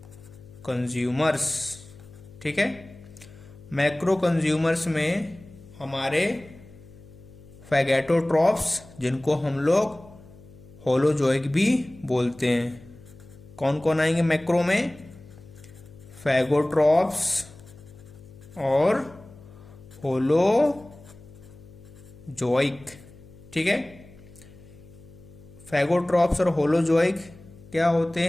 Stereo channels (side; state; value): left; noise; hum, 21 dB below the sound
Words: कंज्यूमर्स, ठीक है, मैक्रो कंज्यूमर्स में हमारे फैगेटोट्रॉप्स, जिनको हम लोग होलोजोइक भी बोलते हैं, कौन कौन आएंगे मैक्रो में? फैगोट्रॉप्स और होलोजोइक। ठीक है, फैगोट्रॉप्स और होलोजोइक क्या होते